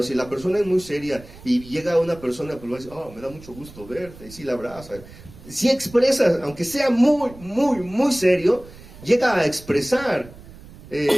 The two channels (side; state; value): right; noise; rumble, 19 dB below the sound